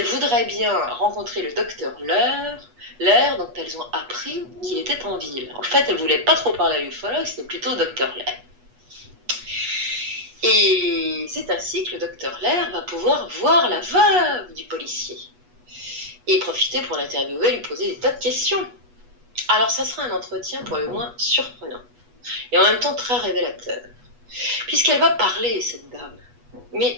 voudraient bien rencontrer le docteur Lerre dont elles ont appris qu'il était en ville. En fait, elles ne voulaient pas trop parler à l'ufologue, c'était plutôt au docteur Lerre. Et c'est ainsi que le docteur Lerre va pouvoir voir la veuve du policier et profiter pour l'interviewer, lui poser des tas de questions. Alors ça sera un entretien pour le moins surprenant et en même temps très révélateur, puisqu'elle va parler, cette dame,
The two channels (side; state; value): left; late; 8.3 ms